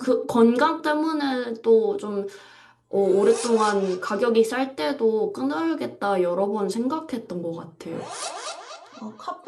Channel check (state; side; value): identical; both; correlation 1.00